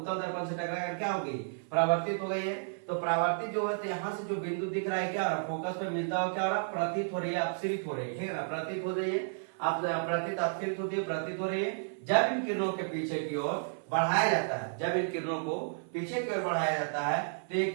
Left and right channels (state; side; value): silent; left; 56 dB below the other